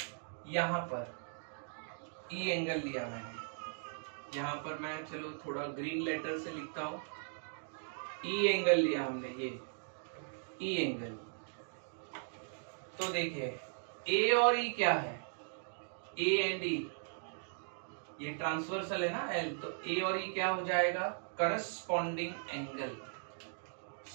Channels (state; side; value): silent; left; digital silence